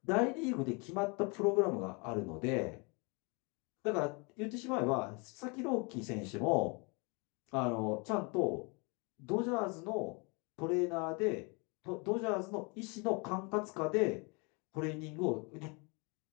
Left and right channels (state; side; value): quieter; right; 31.2 dB